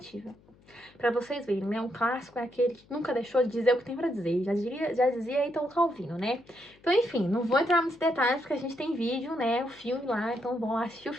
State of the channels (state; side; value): noise; left; hum, 28 dB below the sound